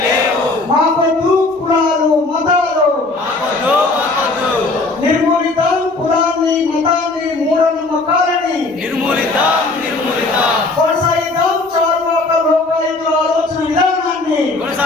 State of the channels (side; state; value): right; quieter; 3.3 dB